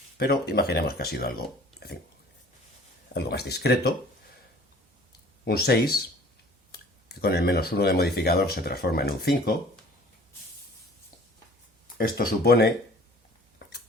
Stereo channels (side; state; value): both; normal; correlation 0.50